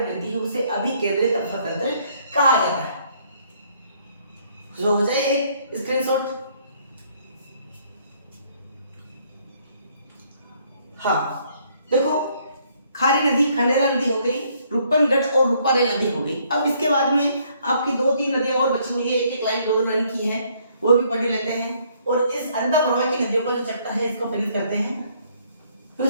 गिरती है, उसे अभिकेंद्रित अफवाह तंत्र कहा जाता है। जो हो जाए एक स्क्रीनशॉट। हाँ देखो, खारी नदी, खंडेला नदी हो गई, रूपनगढ़ और रूपारेल नदी हो गई। अब इसके बाद में आपकी 2-3 नदियां और बची हुई है, एक एक लाइन 2-2 लाइन की है, वो भी पढ़ लेते हैं। और इस अंधा प्रवाह की नदियों का जो चैप्टर है इसको फिनिश करते हैं। फिर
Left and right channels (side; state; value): both; inverted; correlation -0.66